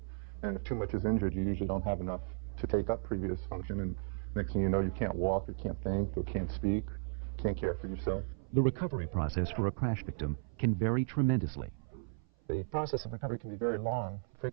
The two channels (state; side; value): silent; left; 54 dB below the other